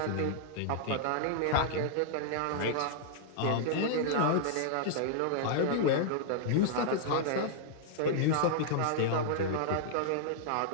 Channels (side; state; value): both; different; correlation -0.01